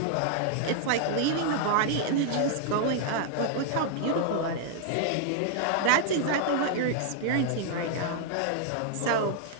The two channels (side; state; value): both; different; correlation -0.01